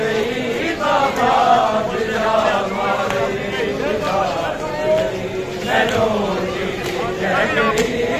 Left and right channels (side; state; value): both; identical; correlation 1.00